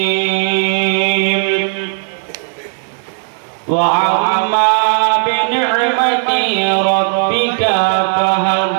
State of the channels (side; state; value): left; silent; digital silence